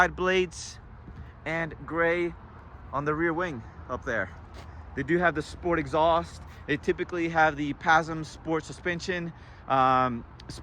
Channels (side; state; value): both; identical; correlation 1.00